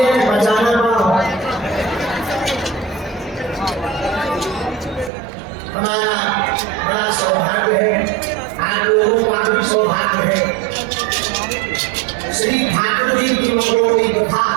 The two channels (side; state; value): left; drops out; at 5.1 s